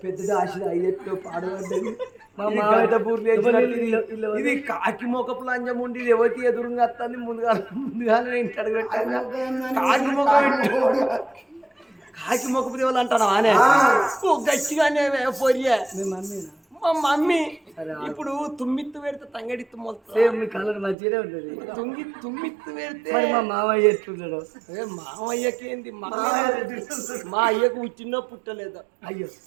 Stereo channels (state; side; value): drops out; left; at 21.0 s